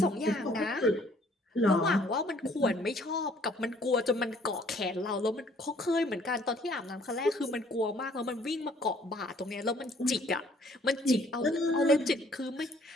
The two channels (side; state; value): both; normal; correlation 0.60